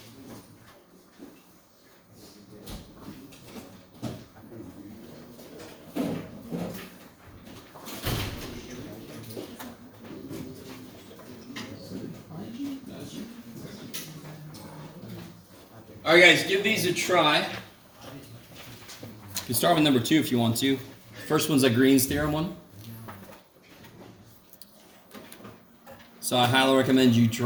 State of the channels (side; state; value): both; identical; correlation 1.00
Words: All right, guys, give these a try. You can start with number 2 if you want to. First one's a Green's theorem one. So I highly recommend you